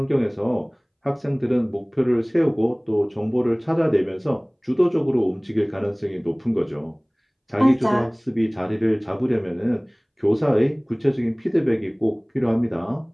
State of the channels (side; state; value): both; identical; correlation 1.00